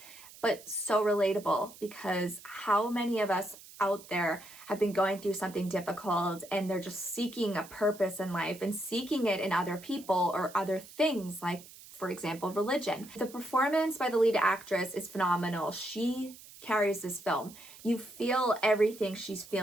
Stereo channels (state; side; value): noise; right; hiss, 19 dB below the sound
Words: but so relatable, because how many of us out there have been going through something difficult and they're just seeking a purpose in life and seeking it in other people or other things, like, for example, religion. The performance by the lead actress is phenomenal. She carries this film. You feel everything she's